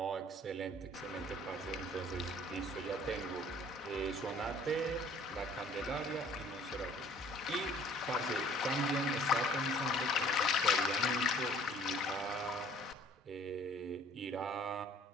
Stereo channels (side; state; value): both; normal; correlation 0.54